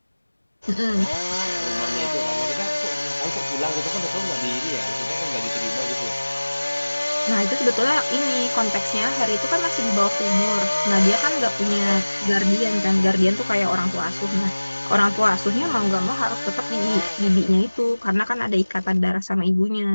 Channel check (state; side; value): inverted; both; correlation -1.00